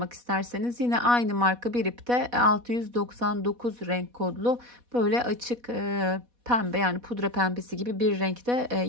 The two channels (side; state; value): left; late; 4.1 ms